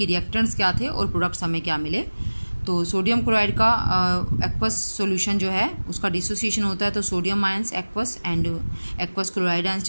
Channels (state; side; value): inverted; both; correlation -1.00